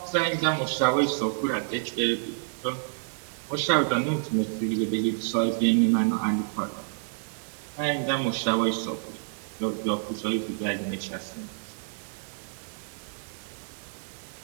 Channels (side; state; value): left; silent; digital silence